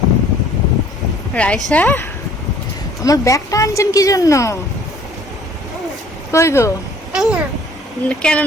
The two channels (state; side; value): normal; both; correlation 0.55